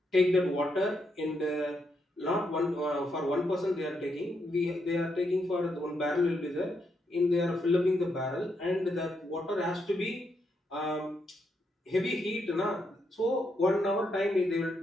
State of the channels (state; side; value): normal; both; correlation 0.80